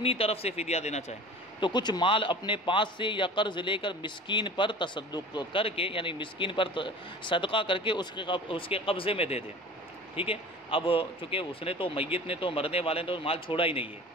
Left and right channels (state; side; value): normal; both; correlation 0.40